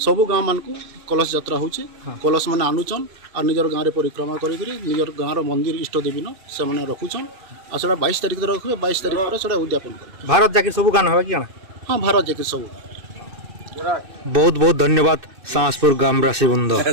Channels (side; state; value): left; late; 2.6 ms